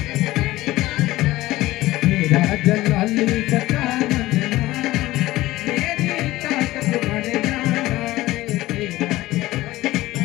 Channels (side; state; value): right; quieter; 17.3 dB